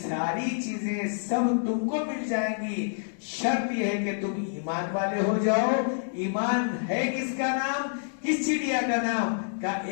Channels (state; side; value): silent; right; 60 dB below the other